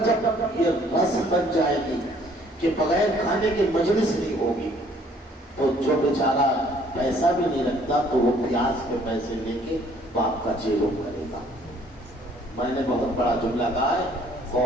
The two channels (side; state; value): both; normal; correlation 0.60